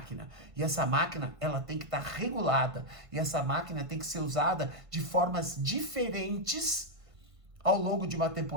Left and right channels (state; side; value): late; left; 1.5 ms